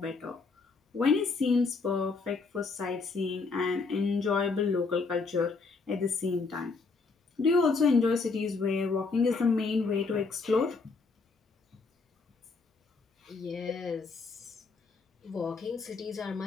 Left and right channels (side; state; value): right; quieter; 4.4 dB